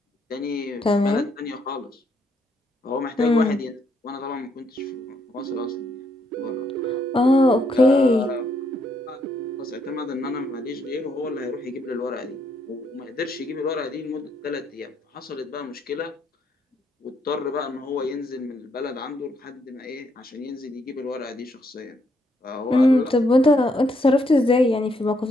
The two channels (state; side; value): normal; both; correlation 0.74